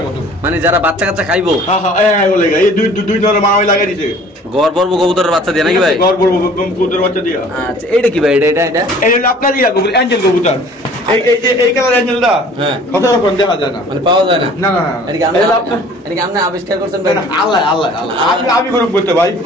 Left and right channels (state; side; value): normal; both; correlation 0.50